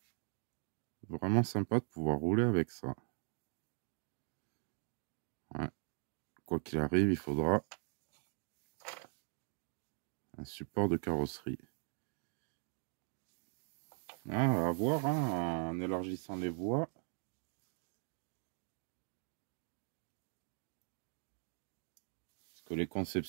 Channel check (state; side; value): silent; left; 51 dB below the other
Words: vraiment sympa de pouvoir rouler avec ça. Ouais. Quoi qu'il arrive, il faudra un support de carrosserie. Ah, à voir, hein, en élargissant les voies. Parce que les